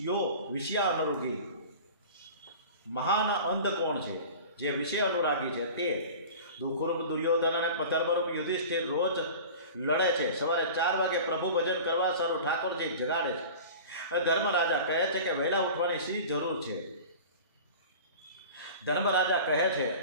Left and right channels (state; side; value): inverted; both; correlation -0.37